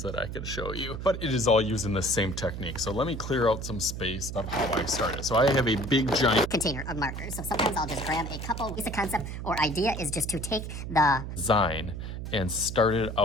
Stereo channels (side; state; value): right; noise; hum, 7 dB below the sound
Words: that I can show you, but it is all using the same technique. So let me clear out some space of how I started. So I have a big giant container of markers. So sometimes I'll just grab a couple. The concept or idea is just to take the design and start it